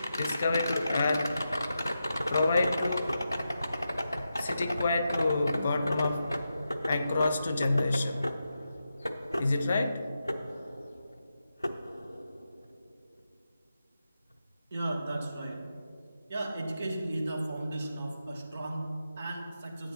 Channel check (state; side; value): inverted; both; correlation -0.88